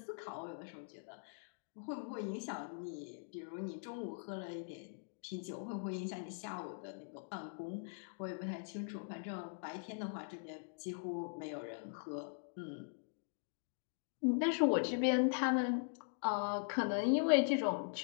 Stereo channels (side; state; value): right; silent; digital silence